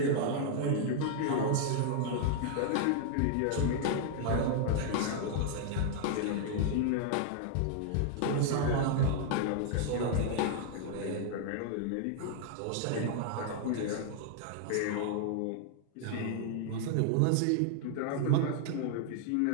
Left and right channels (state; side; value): different; both; correlation -0.01